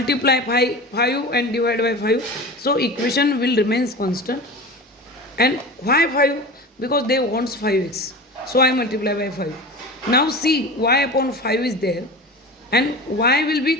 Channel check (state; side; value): normal; both; correlation 0.31